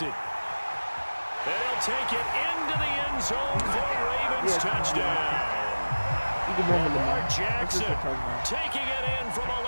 They'll take it into the end zone for Ravens touchdown. Lamar Jackson taking it in from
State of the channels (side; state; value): both; inverted; correlation -1.00